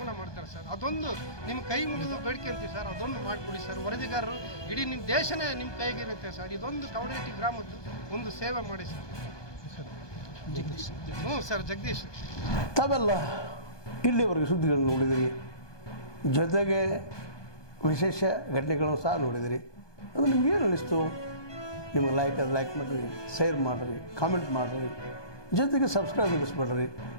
ಮಾಡ್ತಾರೆ ಸರ್. ಅದೊಂದು ನಿಮ್ಮ ಕೈ ಮುಗಿದು ಬೇಡ್ಕೊಂತೀವಿ ಸರ್, ಅದೊಂದು ಮಾಡಿಕೊಡಿ ಸರ್. ವರದಿಗಾರರು ಇಡೀ ನಿಮ್ಮ ದೇಶನೇ ನಿಮ್ಮ ಕೈಗಿರುತ್ತೆ ಸರ್. ಇದೊಂದು ಕವಡೇಟಿ ಗ್ರಾಮದ್ದು ಒಂದು ಸೇವೆ ಮಾಡಿ ಸರ್. ಹ್ಞೂ ಸರ್, ಜಗದೀಶ್. ತಾವೆಲ್ಲ ಇಲ್ಲಿವರೆಗೆ ಸುದ್ದಿಗಳನ್ನು ನೋಡಿದಿರಿ, ಜೊತೆಗೆ ವಿಶೇಷ ಘಟನೆಗಳನ್ನು ಸಹ ನೋಡಿದಿರಿ. ಅದು ನಿಮ್ಗೇನು ಅನ್ನಿಸ್ತು? ನಿಮಗೆ ಲೈಕ್ ಮಾಡಿರಿ, ಶೇರ್ ಮಾಡಿರಿ, ಕಾಮೆಂಟ್ ಮಾಡಿರಿ, ಜೊತೆಗೆ ಸಬ್ಸ್ಕ್ರೈಬ್ ಮಾಡಿಸ್ಬೇಡ್ರಿ.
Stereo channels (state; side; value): late; right; 1.2 ms